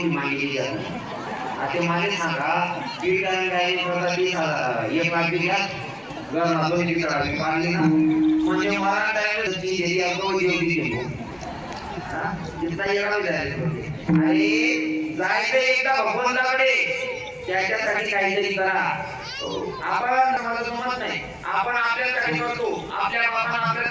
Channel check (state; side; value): identical; both; correlation 1.00